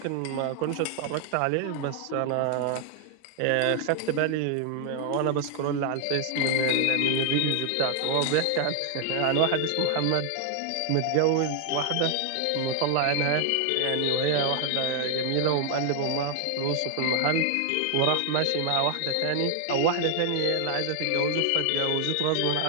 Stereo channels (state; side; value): different; both; correlation 0.00